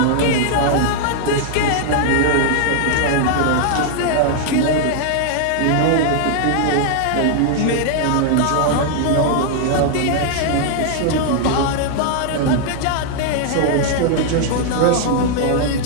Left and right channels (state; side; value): different; both; correlation -0.01